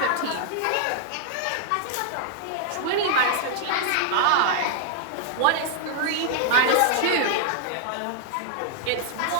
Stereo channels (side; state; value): both; different; correlation -0.01